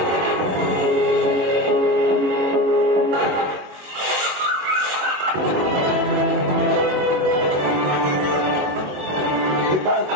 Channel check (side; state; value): left; late; 22 ms